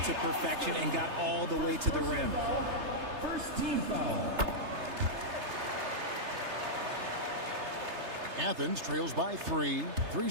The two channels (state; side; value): late; left; 3.3 ms